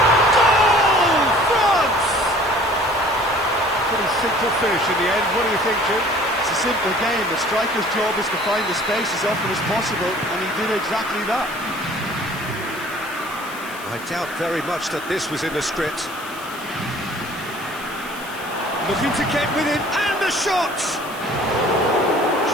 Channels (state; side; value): noise; left; hiss, 17 dB below the sound